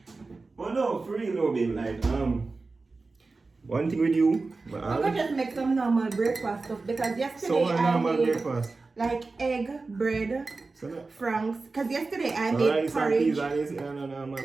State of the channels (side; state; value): left; quieter; 3.8 dB